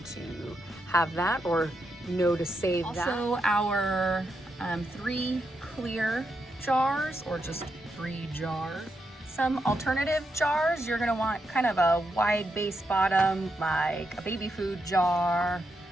to have that or know to save that. Also our 3 clear jars or just 3 jars. Some alternative jars, you're gonna want kind of a wide base bottom, like a baby food jar,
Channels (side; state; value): both; normal; correlation 0.83